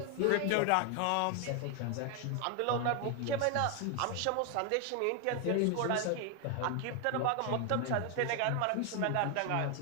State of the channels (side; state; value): both; different; correlation 0.01